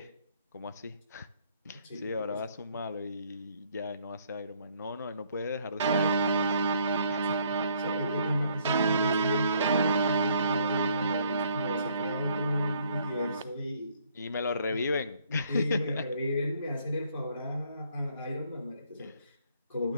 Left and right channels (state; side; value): inverted; both; correlation -0.65